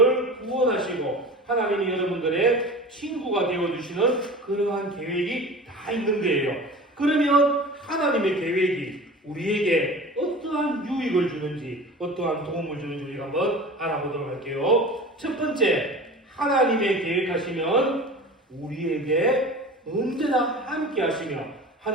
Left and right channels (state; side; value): normal; both; correlation 0.37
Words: 구원하시고 하나님이 여러분들의 친구가 되어주시는 그러한 계획이 다 있는 거예요. 그러면 하나님의 계획이 우리에게 어떠한 유익을 주는지 어떠한 도움을 주는지 우리가 한번 알아보도록 할게요. 첫 번째, 하나님의 계획하시면 우리에게 언제나 함께 하시며